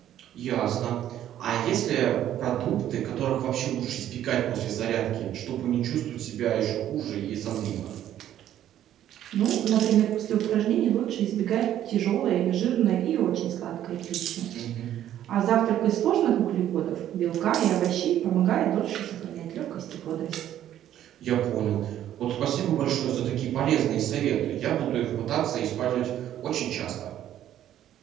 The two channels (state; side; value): quieter; left; 11.6 dB